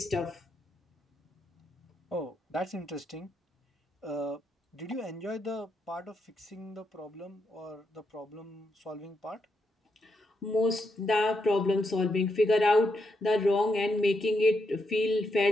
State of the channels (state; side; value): normal; both; correlation 0.81